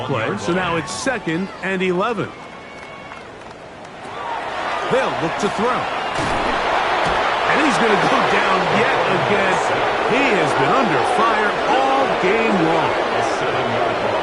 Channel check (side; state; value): both; identical; correlation 1.00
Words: play, so now it's 2nd and 11. They'll look to throw. And he's going to go down yet again. He has been under fire all game long.